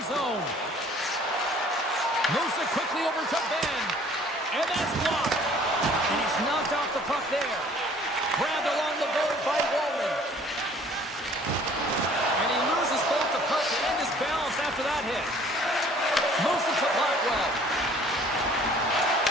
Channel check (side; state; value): both; normal; correlation 0.54